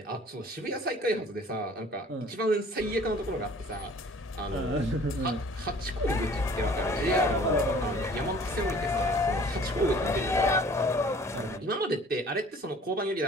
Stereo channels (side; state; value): both; normal; correlation 0.51